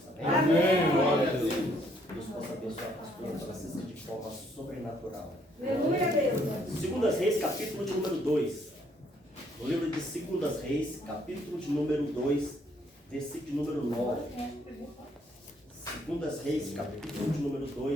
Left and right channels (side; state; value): both; normal; correlation 0.67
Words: Amém? Amém. Glória a Deus. Deus possa abençoar a pastora Francisca de forma sobrenatural. Aleluia, Deus. Segundas Reis, capítulo de número 2. No livro de Segundas Reis, capítulo de número 2, versículo de número 9. Segundas Reis, capítulo de número